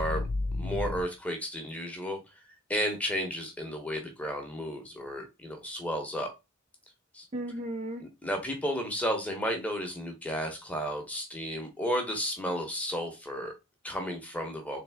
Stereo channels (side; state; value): both; normal; correlation 0.55